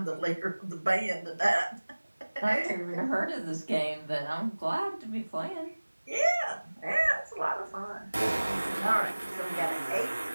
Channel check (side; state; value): both; inverted; correlation -1.00